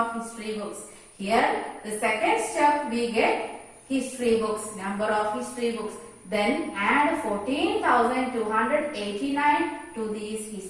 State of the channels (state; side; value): identical; both; correlation 1.00